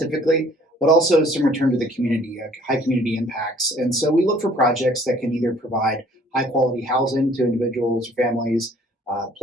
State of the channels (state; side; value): normal; both; correlation 0.56